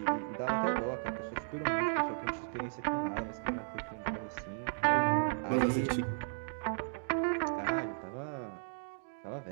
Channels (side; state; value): left; silent; digital silence